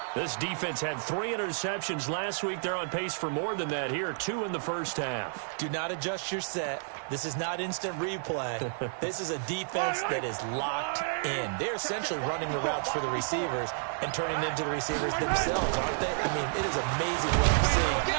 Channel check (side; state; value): left; silent; digital silence